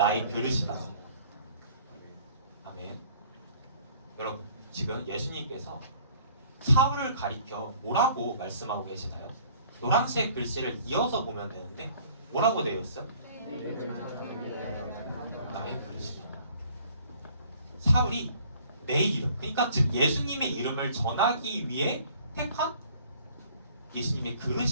그릇이다. 아멘. 여러분 지금 예수님께서 사울을 가리켜 뭐라고 말씀하고 계시나요? 노란색 글씨를 이어서 보면 되는데 뭐라고 되어 있어요? 나의 그릇이다. 사울이 내 이름, 그러니까 즉 예수님의 이름을 전하기 위해 택한 예수님의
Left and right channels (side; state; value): both; inverted; correlation -0.55